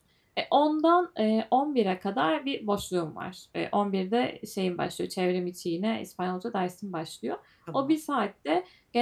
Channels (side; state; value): both; identical; correlation 1.00